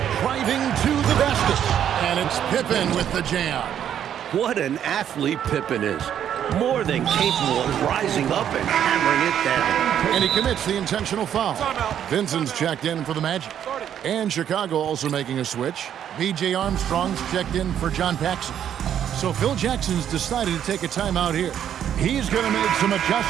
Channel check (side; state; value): left; quieter; 9.7 dB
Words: Driving to the basket. And it's Pippen with the jam. What an athlete Pippen is. More than capable of rising up and hammering it down. And he commits the intentional foul. Vincent's checked in for the Magic. And Chicago also making a switch. B.J. Armstrong's checked in for John Paxson. So Phil Jackson's decided to take a timeout here. He's going to make some